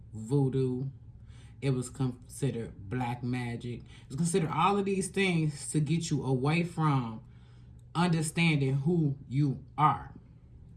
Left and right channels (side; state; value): both; identical; correlation 1.00